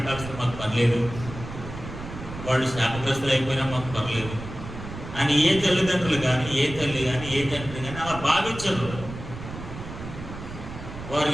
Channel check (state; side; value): noise; right; rumble, 11 dB below the sound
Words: మాకు పర్లేదు, వాళ్ళు శాపగ్రస్తులు అయిపోయినా మాకు పర్లేదు అని ఏ తల్లిదండ్రులు కానీ, ఏ తల్లి కానీ, ఏ తండ్రి కానీ అలా భావించరు. వారు